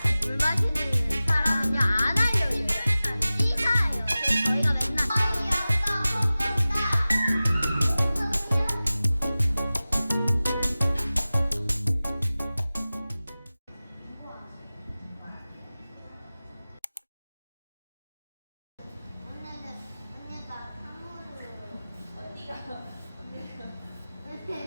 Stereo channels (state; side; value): inverted; both; correlation -0.97